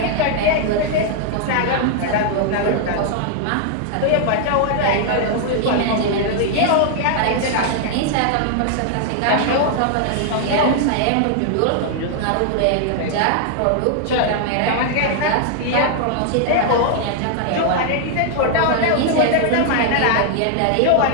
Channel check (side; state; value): both; different; correlation -0.01